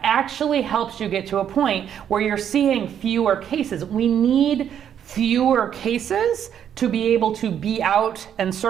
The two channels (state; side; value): quieter; left; 9.2 dB